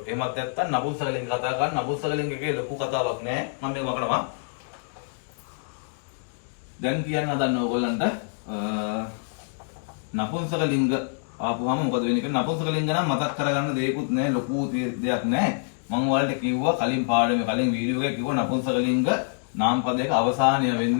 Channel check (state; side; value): silent; right; digital silence